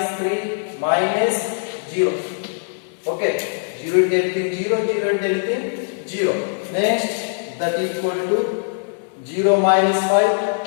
3 minus 0. Okay, 0 into anything 0, 0 into anything 0. Next, that equal to 0 minus 5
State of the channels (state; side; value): silent; right; 65 dB below the other